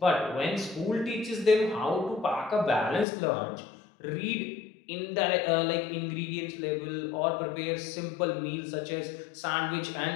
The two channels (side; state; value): right; drops out; at 3.1 s